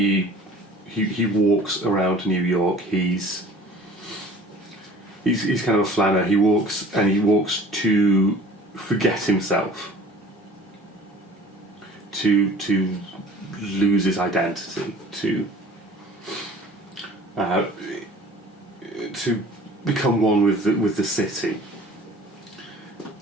walks around New York. He's kind of a flanner. He walks to forget himself, to lose his identity, to become one with the city,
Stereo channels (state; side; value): normal; both; correlation 0.47